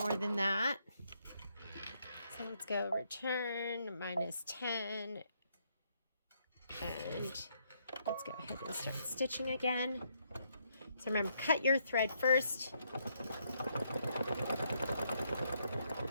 than that. So let's go return minus 10. And let's go ahead and start stitching again. So remember, cut your thread first.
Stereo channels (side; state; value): both; inverted; correlation -0.74